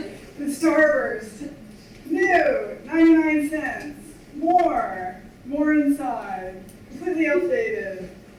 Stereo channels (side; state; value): both; identical; correlation 1.00